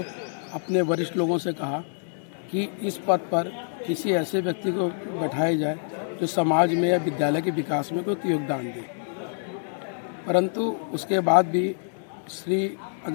अपने वरिष्ठ लोगों से कहा कि इस पद पर किसी ऐसे व्यक्ति को बैठाया जाए जो समाज में या विद्यालय के विकास में कोई योगदान दे। परंतु उसके बाद भी श्री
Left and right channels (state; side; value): silent; right; 61 dB below the other